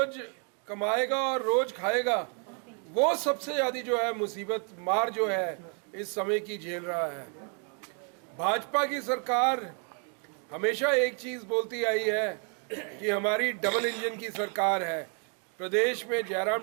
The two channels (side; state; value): left; quieter; 38.5 dB